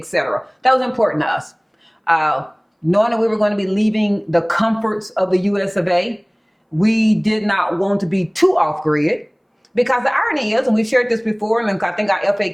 That was important to us. Knowing that we were going to be leaving the comforts of the US of A, we did not want to be too off-grid, because the irony is, and we've shared this before, and I think our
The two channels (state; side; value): identical; both; correlation 1.00